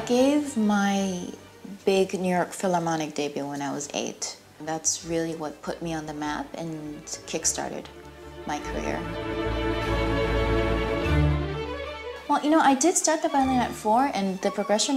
gave my big New York Philharmonic debut when I was 8. That's really what put me on the map and kick-started my career. Well, you know, I did start the violin at 4, and the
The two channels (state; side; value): identical; both; correlation 1.00